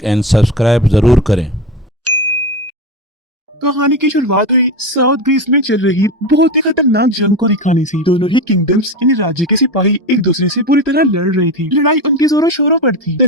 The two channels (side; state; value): both; normal; correlation 0.20